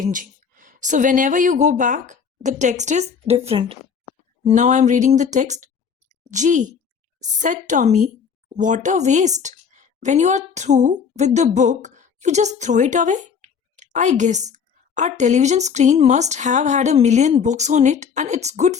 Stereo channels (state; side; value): quieter; right; 6.6 dB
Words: So whenever you go back, the text is different. Now I'm reading the text. Gee, said Tommy, what a waste. When you are through with the book, you just throw it away. I guess our television screen must have had a million books on it and it's good